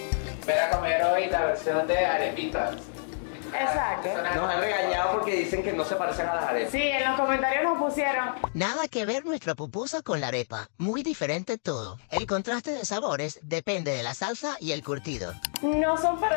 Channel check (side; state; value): right; silent; digital silence